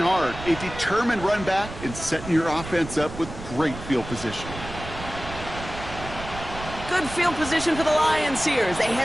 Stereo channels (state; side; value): noise; right; rumble, 11 dB below the sound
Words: hard, a determined run back, and setting your offense up with great field position. Good field position for the Lions here as they